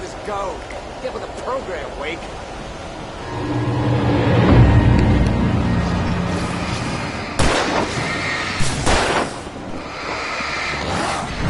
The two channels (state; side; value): identical; both; correlation 1.00